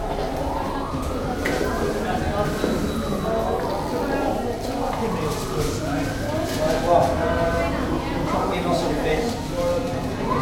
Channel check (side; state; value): both; identical; correlation 1.00